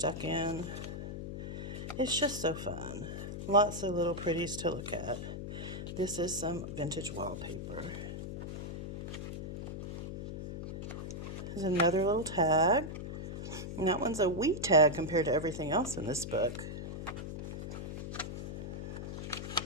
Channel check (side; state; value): left; noise; hum, 6 dB below the sound